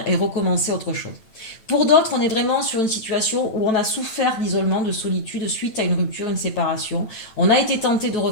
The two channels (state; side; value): late; right; 8.8 ms